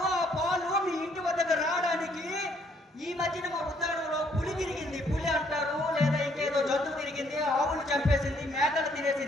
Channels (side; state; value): both; normal; correlation 0.67